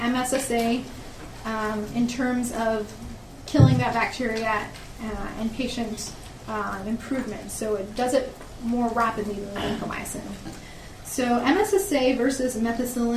MSSA in terms of killing that bacteria and patient improvement. So it does it more rapidly than vancomycin. So MSSA versus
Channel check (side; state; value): both; identical; correlation 1.00